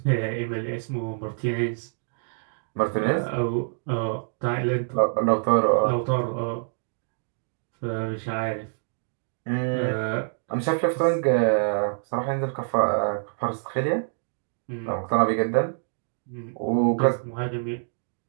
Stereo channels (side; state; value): left; silent; digital silence